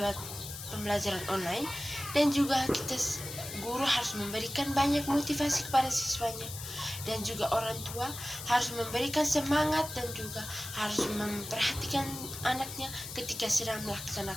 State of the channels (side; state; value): left; noise; hiss, 10 dB below the sound